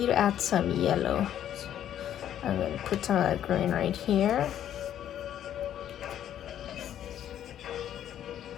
to add some yellow. So I'm gonna put some of that green right here.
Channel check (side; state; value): right; quieter; 10.7 dB